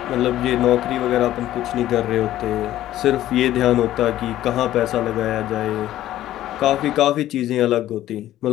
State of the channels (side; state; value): right; quieter; 13.5 dB